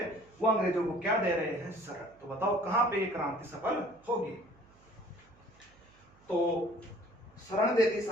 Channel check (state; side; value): noise; right; hum, 29 dB below the sound